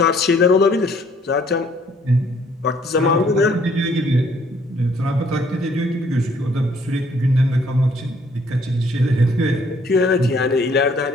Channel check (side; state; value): both; normal; correlation 0.63